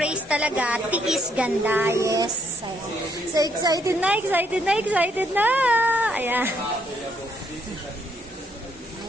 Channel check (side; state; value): both; normal; correlation 0.72